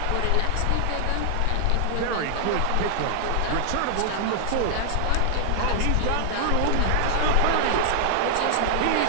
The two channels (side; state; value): both; different; correlation -0.01